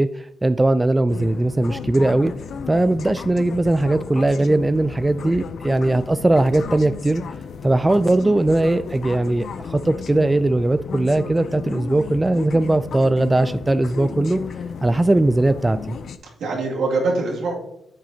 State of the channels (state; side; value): normal; both; correlation 0.97